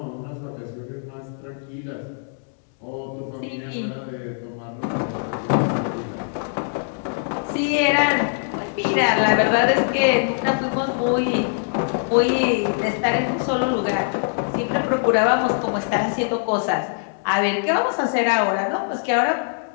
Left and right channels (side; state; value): right; silent; digital silence